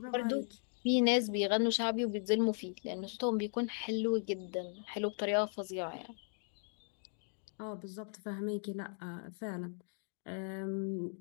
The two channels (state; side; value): silent; right; 53 dB below the other